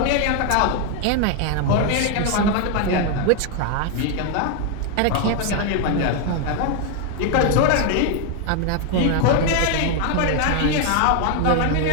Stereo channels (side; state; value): both; different; correlation 0.00